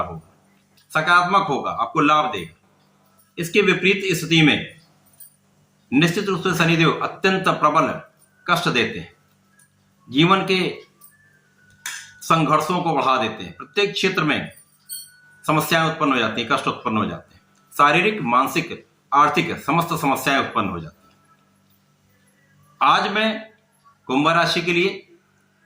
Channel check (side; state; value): both; identical; correlation 1.00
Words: होगा, सकारात्मक होगा, आपको लाभ देगा। इसके विपरीत स्थिति में निश्चित रूप से शनिदेव अत्यंत प्रबल कष्ट देते हैं, जीवन के संघर्षों को बढ़ा देते हैं। प्रत्येक क्षेत्र में समस्याएं उत्पन्न हो जाती हैं, कष्ट उत्पन्न हो जाते हैं, शारीरिक, मानसिक, आर्थिक समस्त समस्याएं उत्पन्न हो जाती हैं। आज मैं कुंभ राशि के लिए,